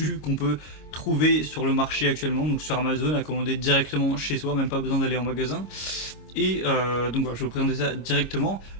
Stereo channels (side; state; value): right; late; 25 ms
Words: qu'on peut trouver sur le marché actuellement, donc sur Amazon, à commander directement chez soi, même pas besoin d'aller en magasin. Et donc voilà, je vais vous présenter ça directement.